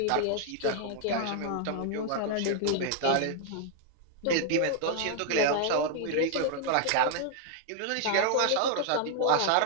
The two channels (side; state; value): both; different; correlation 0.00